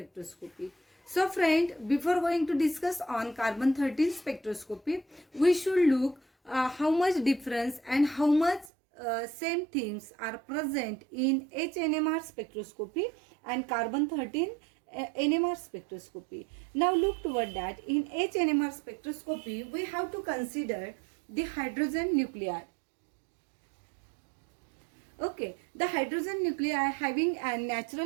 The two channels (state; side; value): drops out; left; at 8.7 s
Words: So friend, before going to discuss on carbon 13 spectroscopy, we should look how much difference and how much same things are present in HNMR spectroscopy and carbon 13 NMR spectroscopy. Now look toward that. In HNMR spectroscopy, we have to consider the hydrogen nuclei. Okay, the hydrogen nuclei having a